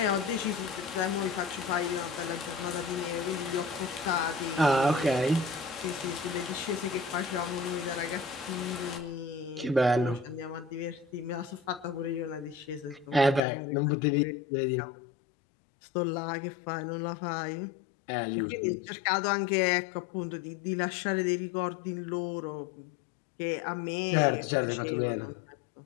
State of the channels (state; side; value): drops out; right; at 13.4 s